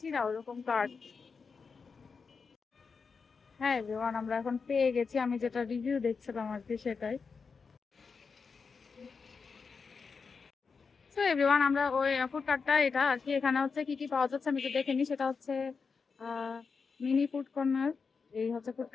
না ওরকম কার্ড। হ্যাঁ এভরিওয়ান, আমরা এখন পেয়ে গেছি, আমি যেটা রিভিউ দেখছিলাম আর কি সেটাই। তো এভরিওয়ান, আমরা ওই ফুড কার্টটা এটা আর কি, এখানে হচ্ছে কি কি পাওয়া যাচ্ছে আমি তো দেখে নিই। সেটা হচ্ছে মিনি ফুড কর্নার, এই হচ্ছে ফুড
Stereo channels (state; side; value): quieter; right; 5.2 dB